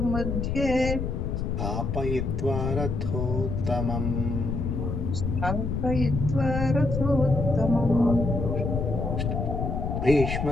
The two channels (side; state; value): left; noise; rumble, 2 dB below the sound